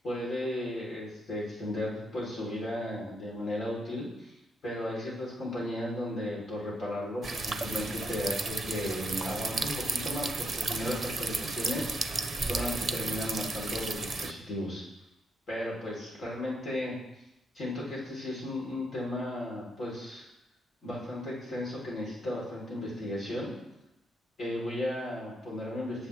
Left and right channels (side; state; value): both; normal; correlation 0.76